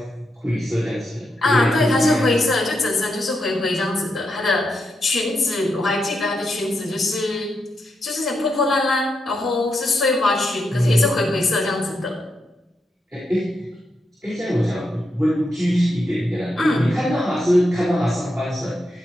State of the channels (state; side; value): normal; both; correlation 0.83